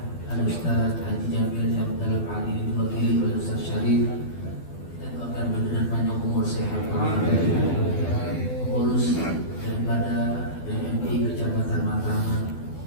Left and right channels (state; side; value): late; right; 12 ms